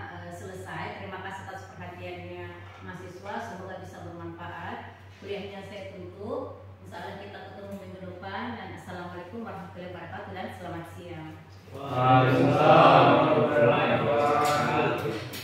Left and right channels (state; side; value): identical; both; correlation 1.00